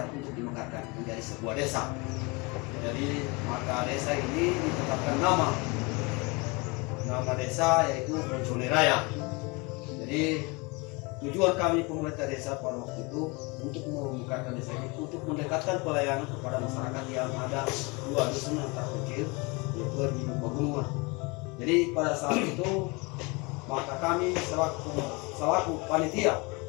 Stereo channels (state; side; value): quieter; right; 27.8 dB